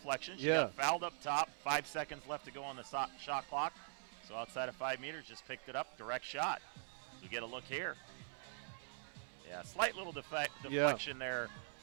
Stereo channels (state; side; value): silent; left; digital silence